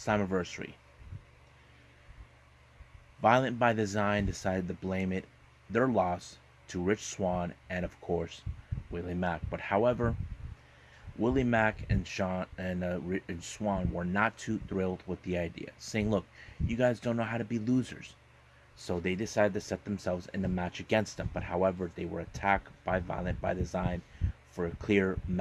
Violent by Design decided to blame their loss to Rich Swann and, of course, Willie Mack. But however, Willie Mack and Swann were not too thrilled with the idea, saying, look, you guys don't know how to be losers. So they decided to set themselves in a match against them. But however, they were attacked by Violent by Design for a clear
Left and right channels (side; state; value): both; identical; correlation 1.00